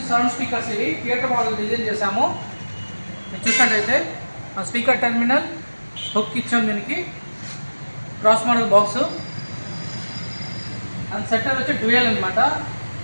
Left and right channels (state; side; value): inverted; both; correlation -1.00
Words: సౌండ్ స్పీకర్స్ ఇవి థియేటర్ మోడల్ డిజైన్ చేసాము. మీరు చూసినట్టయితే స్పీకర్ టెర్మినల్ హుక్ ఇచ్చాము, దీనికి cross model box and setter వచ్చి డ్యూయల్ అనమాట.